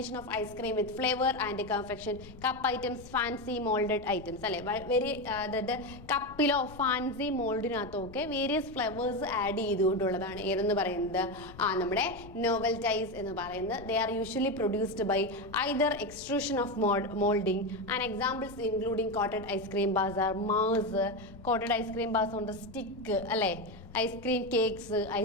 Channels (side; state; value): left; noise; rumble, 18 dB below the sound